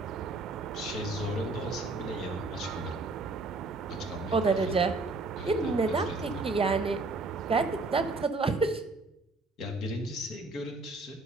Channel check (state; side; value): quieter; left; 3.3 dB